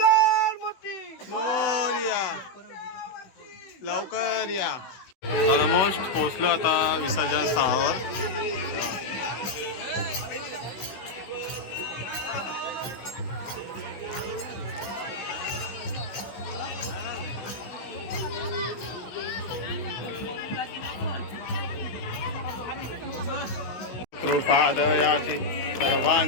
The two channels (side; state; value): right; late; 16 ms